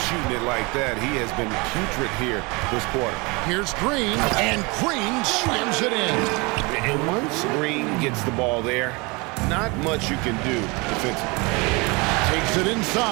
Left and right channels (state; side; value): quieter; left; 27.2 dB